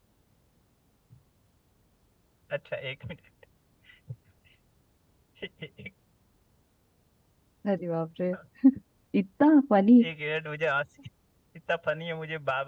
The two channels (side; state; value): both; identical; correlation 1.00